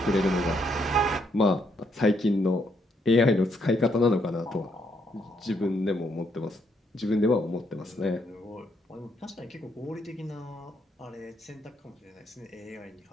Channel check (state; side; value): normal; both; correlation 0.74